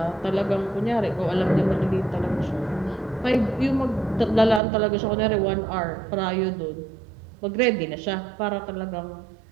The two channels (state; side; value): drops out; left; at 4.6 s